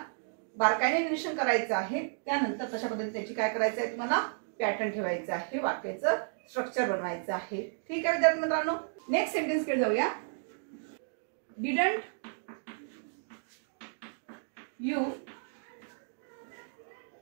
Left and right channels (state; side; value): silent; left; digital silence